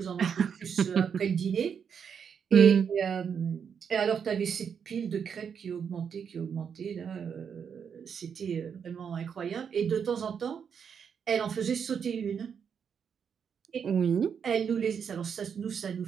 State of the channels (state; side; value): quieter; left; 7.1 dB